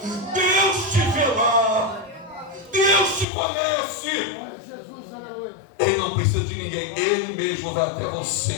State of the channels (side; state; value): right; drops out; at 3.2 s